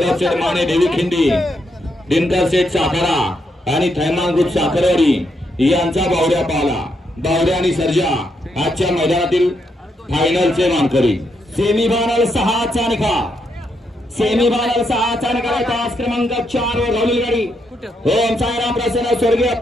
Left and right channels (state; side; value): normal; both; correlation 0.79